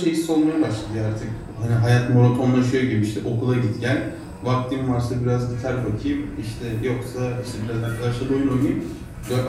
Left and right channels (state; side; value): identical; both; correlation 1.00